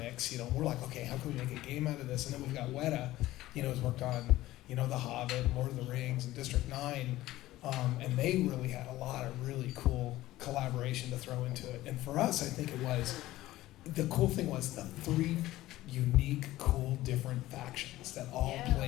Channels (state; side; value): quieter; right; 16.2 dB